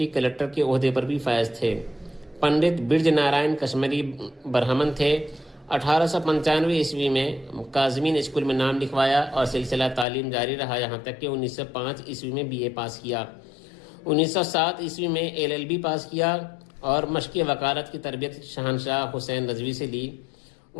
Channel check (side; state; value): right; drops out; at 10.1 s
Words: کلکٹر کے عہدے پر بھی فائز تھے۔ پنڈت برج نارائن کشمیری برہمن تھے۔ 1895 عیسوی میں کاظمین اسکول میں نام لکھوایا اور سلسلہ تعلیم جاری رہا، یہاں تک کہ 1905 عیسوی میں BA پاس کیا۔ 1907 عیسوی میں LLB پاس کیا اور مشق وکالت کی تربیت شہنشاہ حسین رضوی سے لی۔